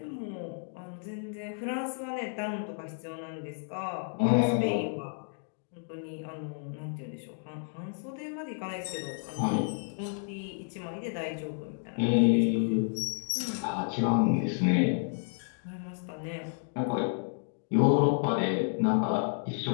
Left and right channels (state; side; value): silent; right; 57 dB below the other